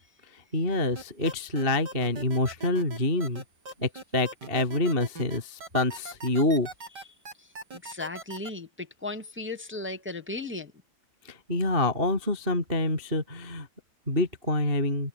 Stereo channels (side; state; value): left; late; 2.7 ms